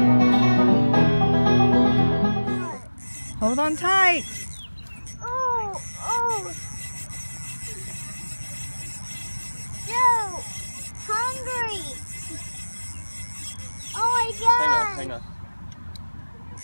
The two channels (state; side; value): inverted; both; correlation -1.00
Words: Hold on tight. Oh. Joe, hungry. Oh my God. Hang on.